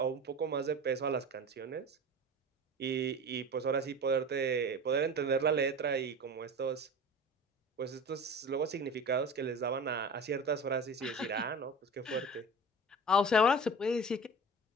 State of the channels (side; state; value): both; normal; correlation 0.35